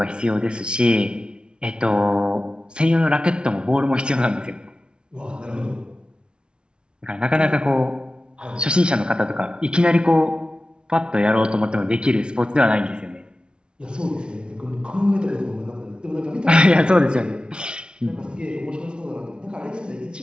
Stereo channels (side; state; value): left; late; 0.055 ms